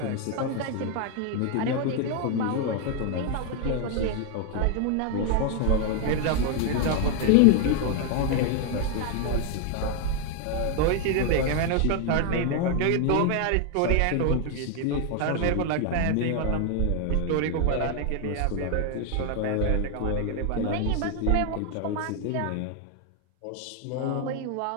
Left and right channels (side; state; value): both; different; correlation 0.01